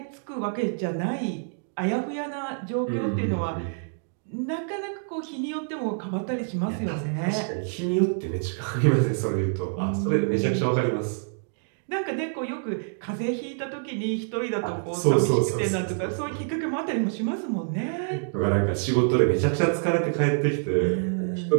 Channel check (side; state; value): left; silent; digital silence